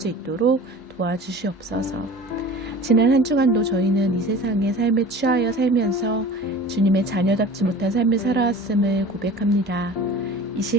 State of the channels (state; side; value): normal; both; correlation 0.40